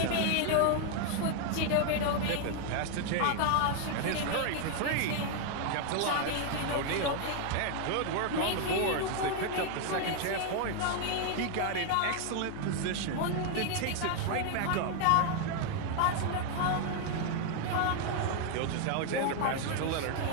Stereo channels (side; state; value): both; different; correlation 0.00